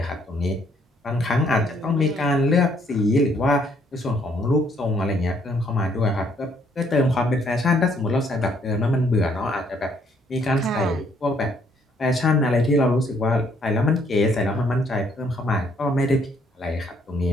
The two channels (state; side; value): normal; both; correlation 0.67